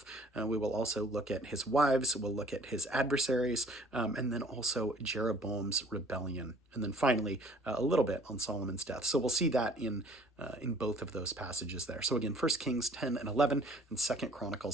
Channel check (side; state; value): both; normal; correlation 0.54